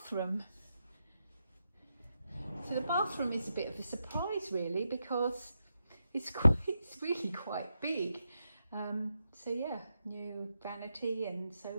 So the bathroom is a bit of a surprise really, because it's really quite big. So yeah, new vanity and so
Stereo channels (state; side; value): inverted; both; correlation -0.86